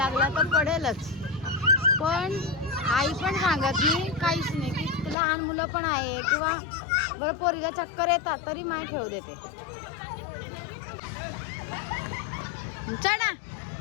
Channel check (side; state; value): right; drops out; at 5.2 s